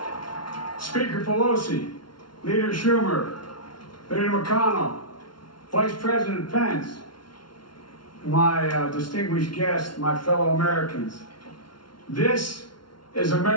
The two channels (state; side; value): late; right; 0.72 ms